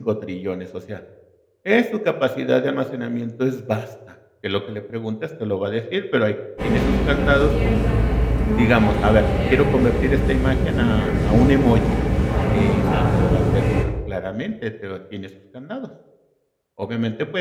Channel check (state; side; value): identical; both; correlation 1.00